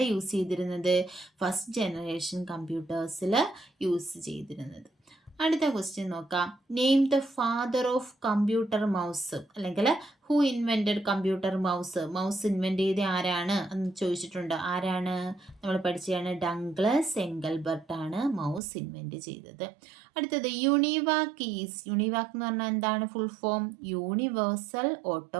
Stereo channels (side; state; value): left; drops out; at 18.6 s